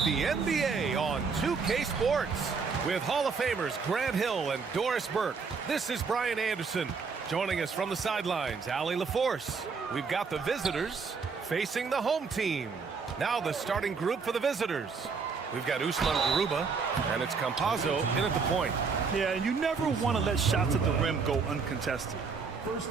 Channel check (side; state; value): left; quieter; 5.2 dB